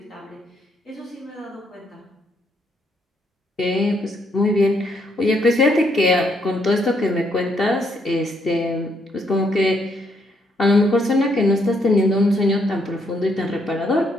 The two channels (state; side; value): normal; both; correlation 0.73